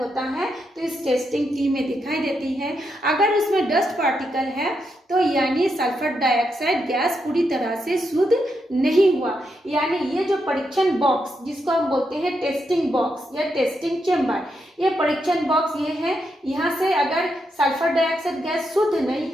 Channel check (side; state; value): both; normal; correlation 0.82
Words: है तो इस टेस्टिंग टी में दिखाई देती है। अगर उसमें डस्ट पार्टिकल है तो यानी सल्फर डाइऑक्साइड गैस पूरी तरह से शुद्ध नहीं हुआ। यानी ये जो परीक्षण बॉक्स, जिसको हम बोलते हैं टेस्टिंग बॉक्स या टेस्टिंग चेम्बर, ये परीक्षण बॉक्स ये है, यहाँ से अगर सल्फर डाइऑक्साइड गैस शुद्ध नहीं